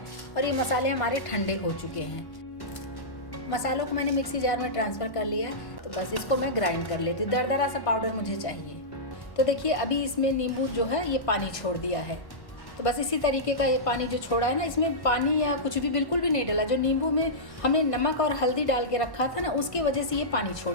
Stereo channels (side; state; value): right; late; 1.5 ms